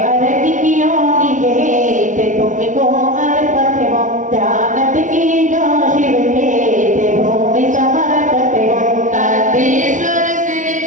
arati kiyo nije te tumko arpate ho janat ki jo shiv me te bhumi samarpate ho. Nandishwar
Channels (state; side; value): late; left; 0.37 ms